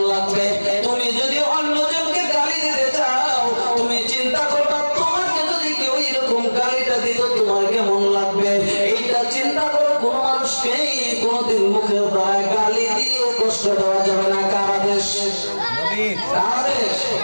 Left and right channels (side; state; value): both; inverted; correlation -1.00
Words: লাগবে। তুমি যদি অন্যজনকে গালি দিতে চাও, তুমি চিন্তা করবা তোমাকে যদি কেউ এরকম গালিটা দিত তোমার কেমন লাগবে। এইটা চিন্তা করো। কোন মানুষকে কোনদিন মুখের দ্বারা গালি দিয়ে কষ্ট দেওয়া যাবে না। কার আদেশ?